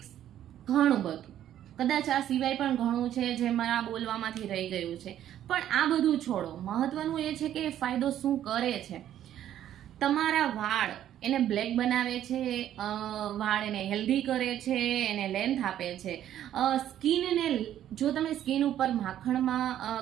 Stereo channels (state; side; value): quieter; left; 11.3 dB